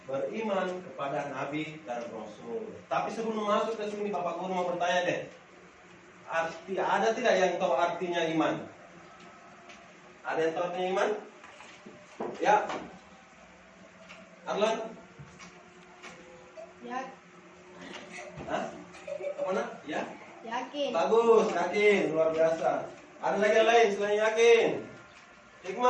beriman kepada Nabi dan Rasul. Tapi sebelum masuk ke sini, Bapak Guru mau bertanya deh. Ada tidak yang tahu artinya iman? Ada yang tahu artinya iman? Ya. Arlan? Ya, Hah? Apa nak? Ya? yakin. Bagus, yakin, luar biasa. Ada lagi yang lain selain yakin?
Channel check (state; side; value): identical; both; correlation 1.00